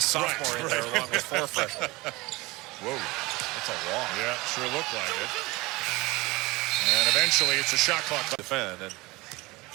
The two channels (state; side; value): quieter; left; 22.5 dB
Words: sophomore in there along with 4 freshmen. Whoa. That's a walk. Yeah, sure looked like it. And eventually, it's a shot clock. Defend. And